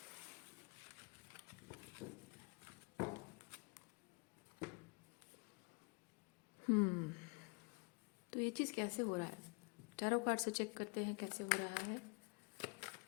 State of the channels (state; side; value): quieter; right; 32.2 dB